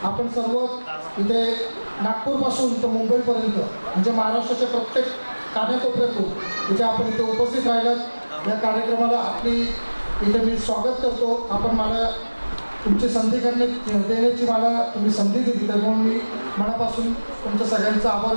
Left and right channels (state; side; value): inverted; both; correlation -1.00